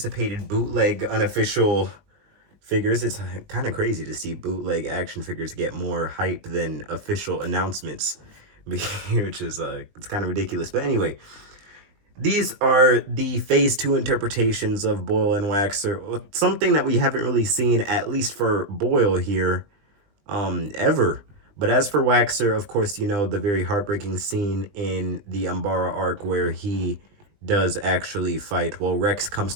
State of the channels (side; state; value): left; late; 20 ms